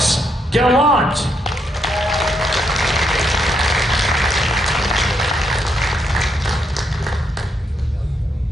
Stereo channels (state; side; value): normal; both; correlation 0.77